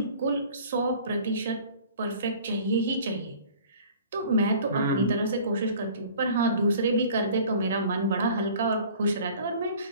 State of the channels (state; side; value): inverted; both; correlation -0.47